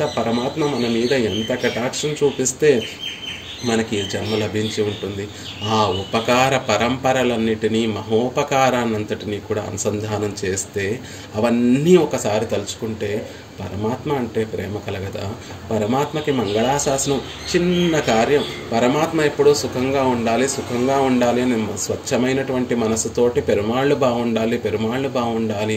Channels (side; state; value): both; identical; correlation 1.00